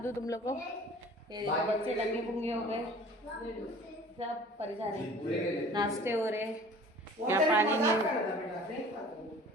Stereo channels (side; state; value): both; normal; correlation 0.47